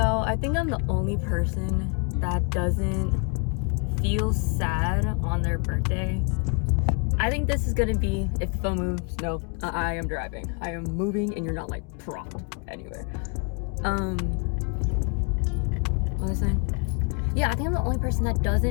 I think I'm the only person that doesn't feel sad on their birthday. I think this is gonna be, if the phone moves, no, I am driving. I am moving and you're not like propped anywhere. What was I saying? Yeah, I think I'm the only person that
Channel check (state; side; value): quieter; right; 36.2 dB